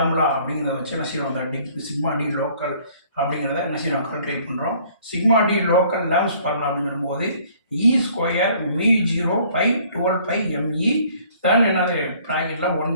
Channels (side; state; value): both; inverted; correlation -0.57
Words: அப்படிங்கிறத வச்சு என்ன செய்யணும், அந்த சிக்மா டி லோக்கல் அப்படிங்கிறத என்ன செய்யணும் கால்குலேட் பண்ணுறோம். Sigma D local lambs formula அப்படின்னு சொல்லும்போது E² μ0/12πme then என்னது ப்ராக்கெட்டில்